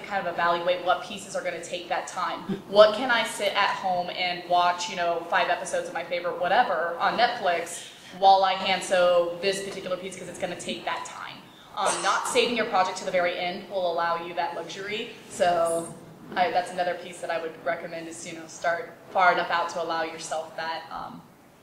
kind of evaluate what pieces are going to take that time. What can I sit at home and watch, 5 episodes of my favorite whatever on Netflix while I hand sew this particular piece because it's going to take that time. Not saving your project to the very end will allow you that luxury. So that's another piece that I would recommend is, start far enough out to allow yourself that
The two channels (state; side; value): identical; both; correlation 1.00